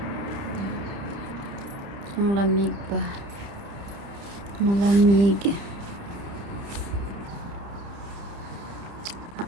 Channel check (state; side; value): late; left; 30 ms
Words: Ang lamig pa. Malamig.